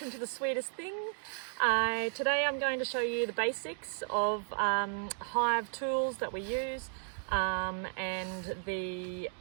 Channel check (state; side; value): silent; left; 55 dB below the other